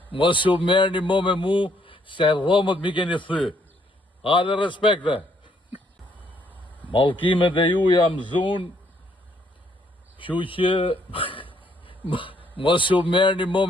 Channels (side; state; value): both; normal; correlation 0.69